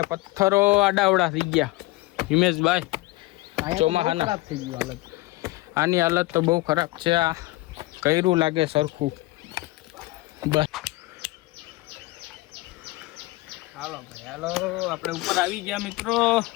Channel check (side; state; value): right; quieter; 20.7 dB